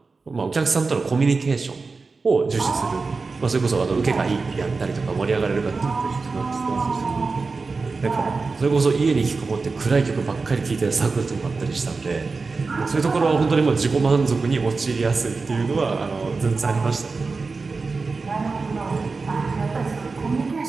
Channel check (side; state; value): left; quieter; 4.2 dB